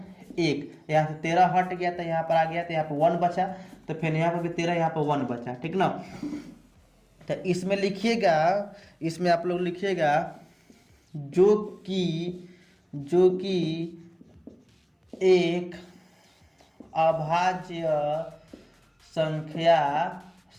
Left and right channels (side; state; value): both; identical; correlation 1.00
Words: 1, यहाँ से 13 हट गया तो यहाँ पर आ गया, तो यहाँ पर 1 बचा, तो फिर यहाँ पर भी 13, यहाँ पर 1 बचा, ठीक ना। तो इसमें लिखिएगा, इसमें आप लोग लिखिएगा जो कि एक अभाज्य संख्या